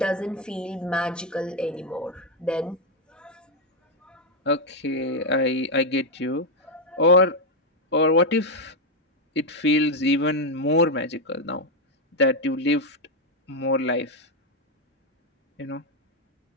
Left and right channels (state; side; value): normal; both; correlation 0.03